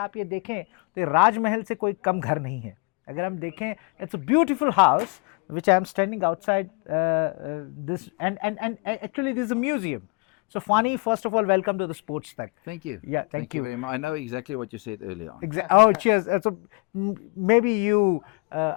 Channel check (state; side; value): quieter; right; 30.7 dB